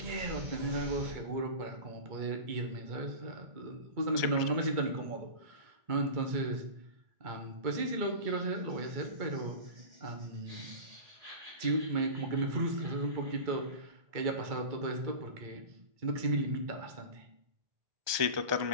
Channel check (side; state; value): left; late; 1.2 ms